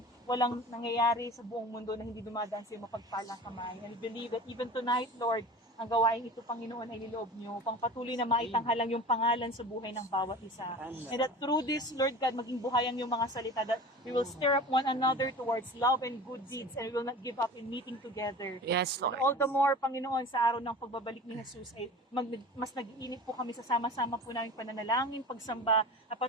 walang nangyayari sa buong mundo na hindi dumadaan sa iyong mapagpalang kamay. And I believe that even tonight, Lord, ang gawain ito, Panginoon, ay niloob niyo upang patuloy na maitanghalang yung pangalan sa buhay ng bawat isa. And that through this, Lord God, maging buhayan yung mga salita, that we will stir up one another towards love and good deeds, and we will not give up in meeting together. Yes, And Lord. all the more, Panginoon, sa araw ng pagbabalik ni Jesus, ay mas nag-iinit po kami sa sama-sama po namin pananalangin, pagsamba, at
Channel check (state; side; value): normal; both; correlation 0.37